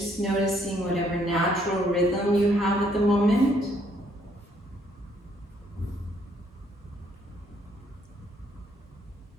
noticing whatever natural rhythm you have at the moment.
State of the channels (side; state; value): both; normal; correlation 0.68